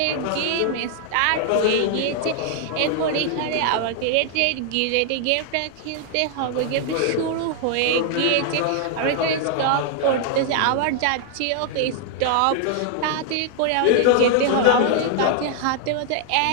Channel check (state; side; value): different; both; correlation 0.00